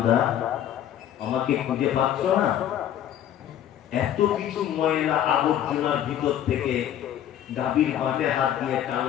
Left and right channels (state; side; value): quieter; right; 10.9 dB